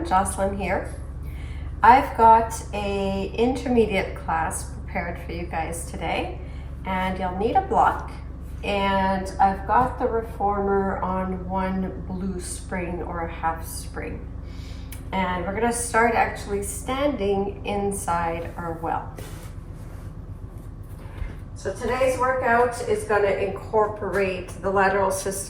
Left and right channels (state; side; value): identical; both; correlation 1.00